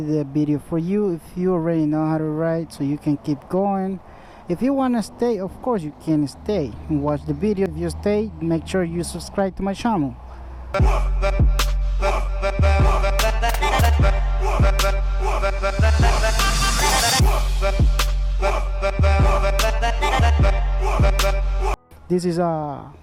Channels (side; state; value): both; identical; correlation 1.00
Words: the video for you. If you already know how to ride, so you can keep going. If you want to stay, of course you can stay and watch the video. If you stay, make sure you subscribe to my channel. This is my